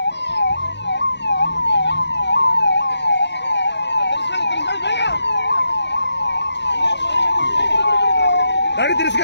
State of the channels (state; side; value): late; right; 0.51 ms